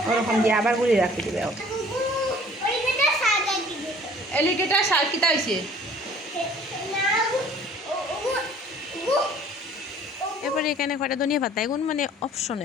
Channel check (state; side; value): normal; both; correlation 0.52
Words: ওরকম দিয়ে আবার গুলি রাখি দিবে। এলিগেটা শাক কিতা হয়েছে? এরপরে এখানে কয়টা ধনিয়া পাতা, এগুন মানে